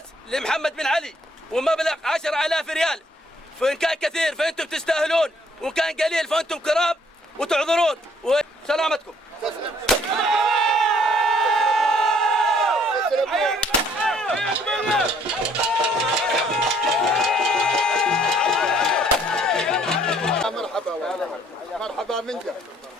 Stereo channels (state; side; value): normal; both; correlation 0.63